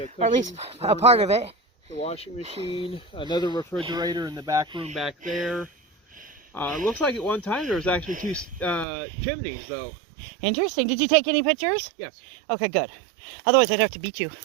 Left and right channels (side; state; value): left; drops out; at 8.8 s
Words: or at least cushions, a part of it. The washing machine, another refrigerator in the back room back there. It looks like at one time there was actually two chimneys, though. Interesting. Did you take any pictures? Yes. Okay, good. Otherwise, I'd have to beat you.